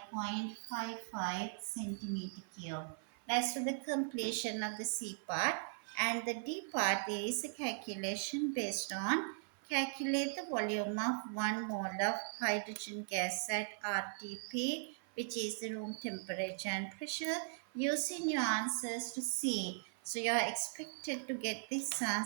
centimeter cube. That's for the completion of the C part. And the D part is a calculation based on calculate the volume of 1 mole of hydrogen gas at RTP, which is the room temperature and pressure, using your answers to C. So you are expected to get this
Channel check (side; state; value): left; silent; 52 dB below the other